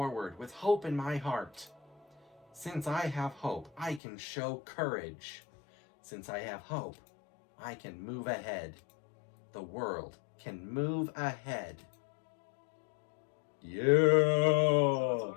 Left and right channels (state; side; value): drops out; right; at 4.0 s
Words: with hope in my heart. Since I have hope, I can show courage. Since I have hope, I can move ahead. The world can move ahead. What's the Yeah!